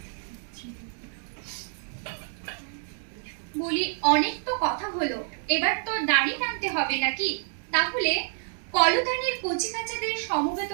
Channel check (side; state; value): left; silent; digital silence